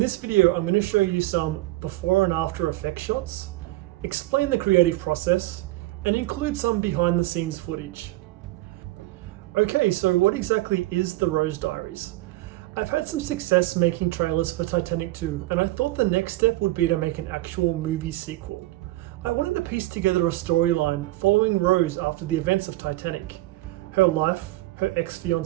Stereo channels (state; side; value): quieter; left; 18.0 dB